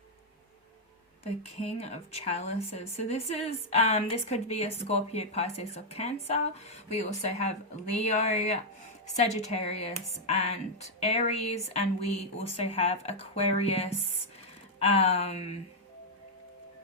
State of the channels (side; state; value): both; normal; correlation -0.03